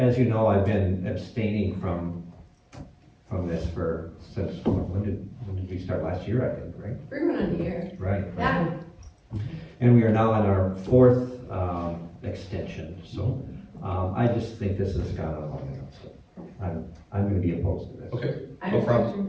you know, I've been abstaining from this since, when did we start? Last year, I think, right? We're going on a year. Right. Yeah, And we are now on our fourth, extension, so, I just think this has gone on long enough, so I'm gonna be opposed to this. Okay, I No respect problem. your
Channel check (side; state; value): both; identical; correlation 1.00